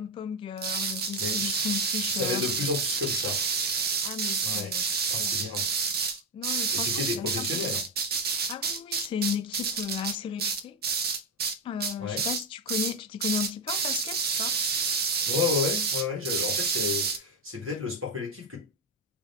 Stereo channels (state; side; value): normal; both; correlation 0.08